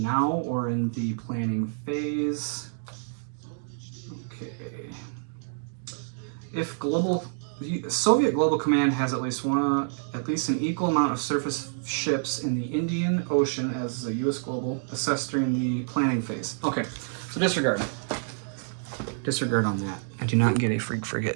or in the planning phase. Okay. If Soviet Global Command has at least an equal amount of surface ships in the Indian Ocean as the U.S. Global assessed during the planning phase. Okay, so disregard. Disregard on that. I do not get a freak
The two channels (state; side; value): silent; left; digital silence